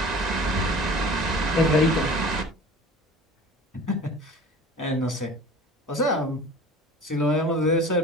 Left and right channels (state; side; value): normal; both; correlation 0.41